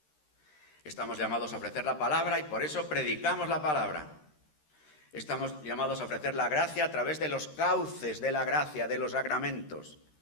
Estamos llamados a ofrecer la palabra y por eso predicamos la palabra. Estamos llamados a ofrecer la gracia a través de los cauces de la gracia, de los sacramentos.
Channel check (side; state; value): right; late; 13 ms